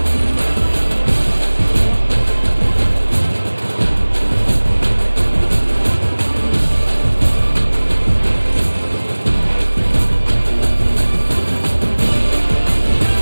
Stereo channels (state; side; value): inverted; both; correlation -1.00